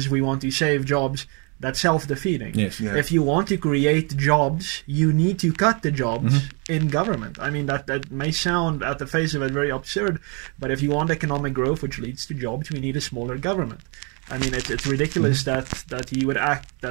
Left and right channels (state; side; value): quieter; left; 34.3 dB